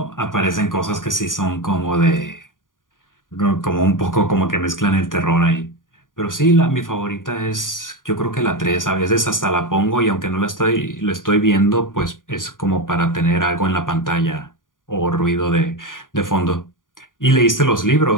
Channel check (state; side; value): late; right; 0.89 ms